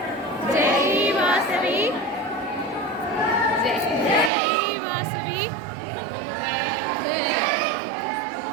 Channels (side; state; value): left; drops out; at 4.3 s